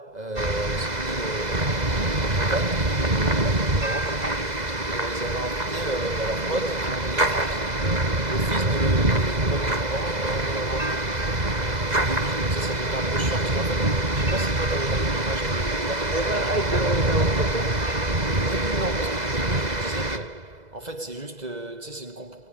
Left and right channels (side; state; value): left; late; 2.0 ms